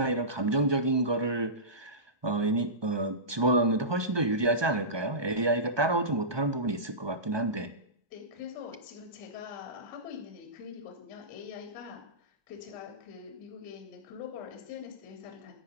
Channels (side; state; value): left; late; 1.2 ms